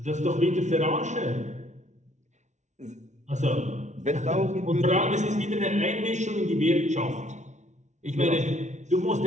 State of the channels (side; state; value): left; late; 0.34 ms